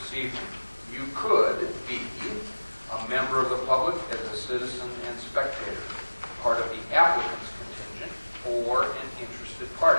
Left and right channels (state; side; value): inverted; both; correlation -1.00